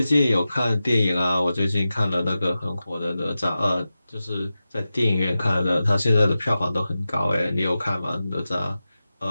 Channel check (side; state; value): both; inverted; correlation -0.93